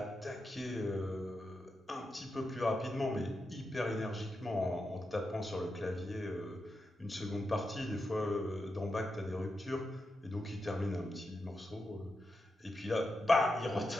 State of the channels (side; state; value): both; normal; correlation 0.88